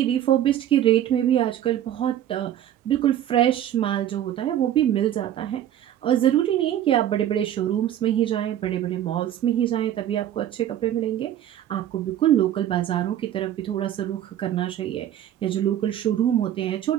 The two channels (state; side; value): quieter; left; 11.4 dB